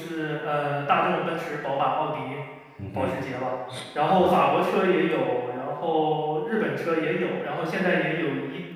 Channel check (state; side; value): identical; both; correlation 1.00